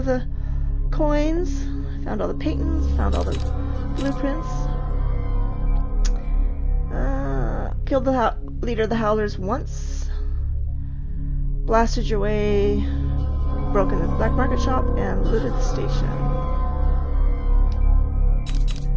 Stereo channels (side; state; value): both; identical; correlation 1.00